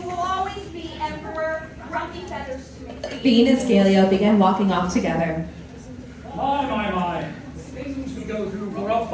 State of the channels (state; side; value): identical; both; correlation 1.00